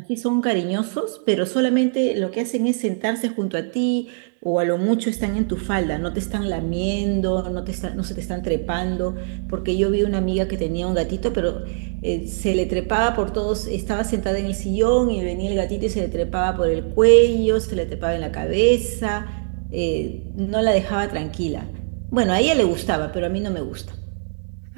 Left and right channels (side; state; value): left; silent; digital silence